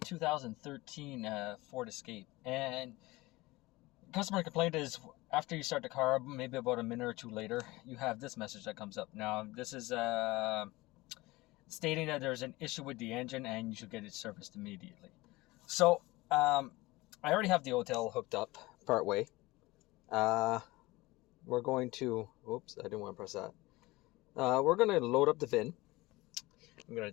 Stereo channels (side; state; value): right; quieter; 20.7 dB